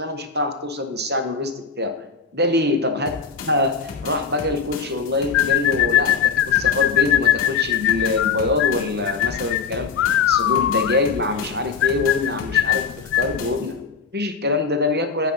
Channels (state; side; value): quieter; right; 5.6 dB